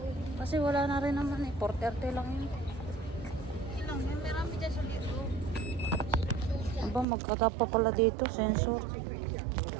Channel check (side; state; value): left; drops out; at 7.1 s